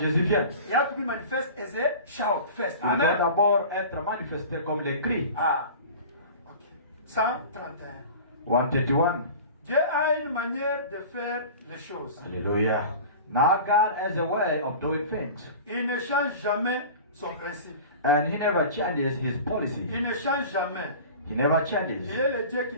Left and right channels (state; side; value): inverted; both; correlation -0.37